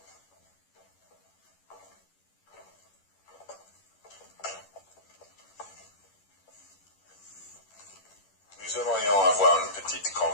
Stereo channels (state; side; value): late; right; 10 ms